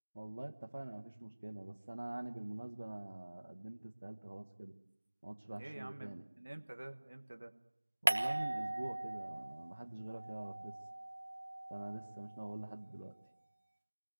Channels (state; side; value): inverted; both; correlation -1.00